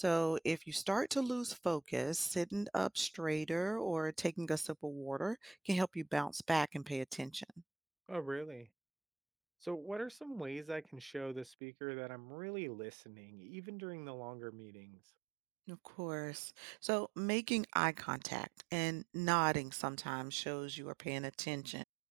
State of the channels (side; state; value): left; drops out; at 11.6 s